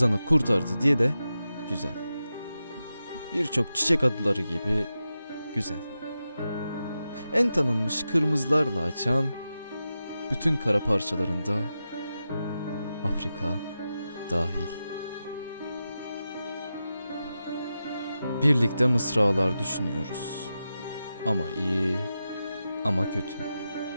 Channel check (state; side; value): inverted; both; correlation -0.91